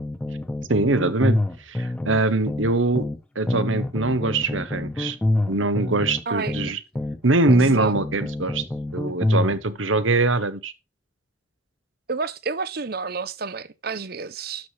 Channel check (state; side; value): normal; both; correlation 0.40